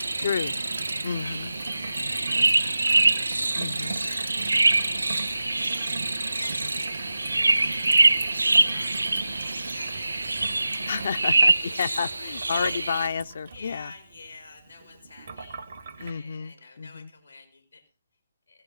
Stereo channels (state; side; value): inverted; both; correlation -0.92